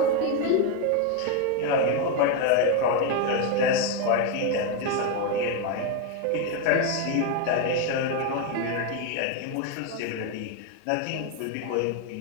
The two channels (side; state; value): both; different; correlation 0.02